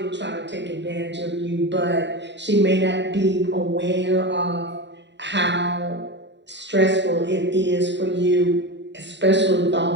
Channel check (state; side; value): late; left; 0.52 ms